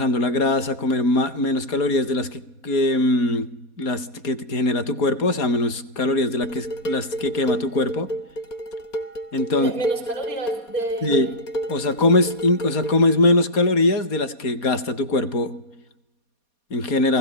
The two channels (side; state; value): right; late; 4.2 ms